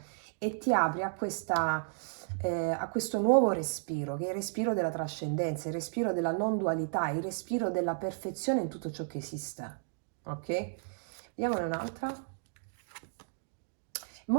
e ti apri a questo nuovo respiro, che è il respiro della trascendenza, il respiro della non dualità, il respiro della perfezione in tutto ciò che esiste. Ok? Vediamone un'altra.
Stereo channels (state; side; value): silent; left; digital silence